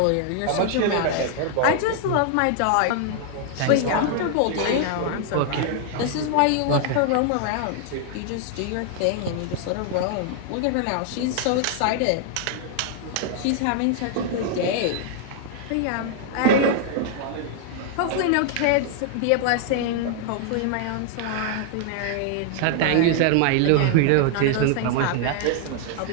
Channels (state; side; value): different; both; correlation 0.00